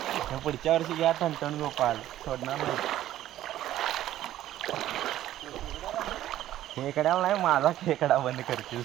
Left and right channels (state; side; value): quieter; left; 13.2 dB